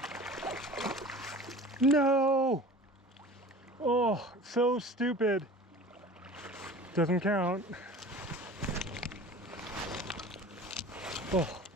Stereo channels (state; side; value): normal; both; correlation 0.41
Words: No! Oh, so stupid. Doesn't count. Oh,